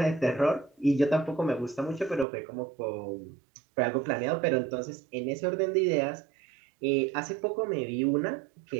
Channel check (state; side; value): drops out; left; at 2.2 s